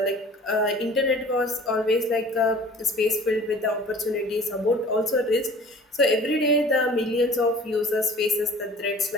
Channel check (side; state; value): both; normal; correlation 0.47